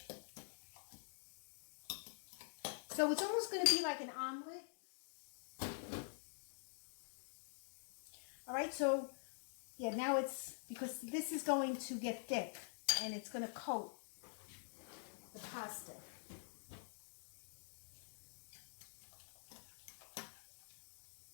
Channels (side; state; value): right; silent; digital silence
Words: So it's almost going to be like an omelet. All right, so yeah, now it's, because this is going to get thick and it's going to coat the pasta.